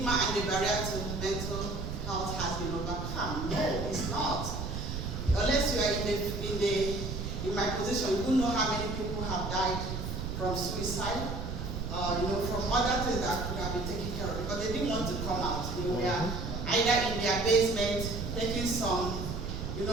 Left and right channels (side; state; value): right; noise; rumble, 4 dB below the sound